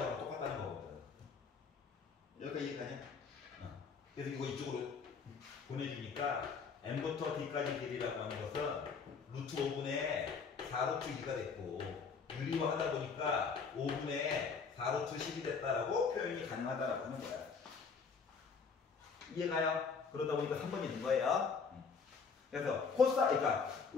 똑같다는 거거든. 여기까지 이해가냐? 그래서 이거 이쪽으로 보내주니까 M부터 D까지 길이라고 하는 것은 루트 5분의 4루트 2가 됐고 유리화하다 보니까 5분의 4루트 10이 됐다라고 표현이 가능하다라고 하는 거야. 이해가요? 그러다 보니까 3번이 된 거예요. 그래서 그러니까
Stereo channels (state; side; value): quieter; right; 5.4 dB